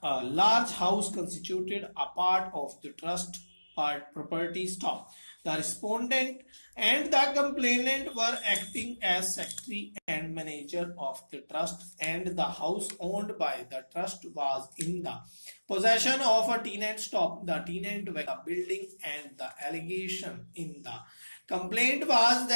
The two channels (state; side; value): inverted; both; correlation -1.00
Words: A large house constituted a part of the trust property. Stop. The respondent and the complainant were acting as secretary and manager of the trust, and the house owned by the trust was in the possession of a tenant. Stop. The tenant were the building, and the allegation in the complaint was